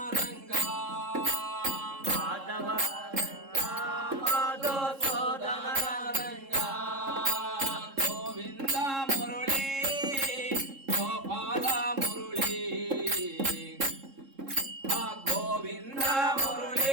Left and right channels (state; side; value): late; left; 3.7 ms